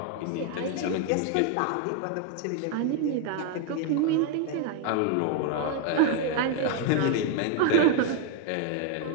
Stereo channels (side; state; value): both; different; correlation 0.01